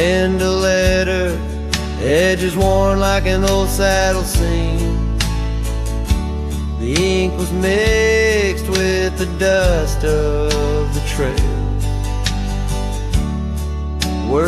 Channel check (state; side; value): identical; both; correlation 1.00